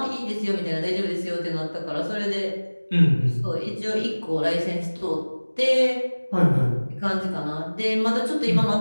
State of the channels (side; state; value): both; inverted; correlation -1.00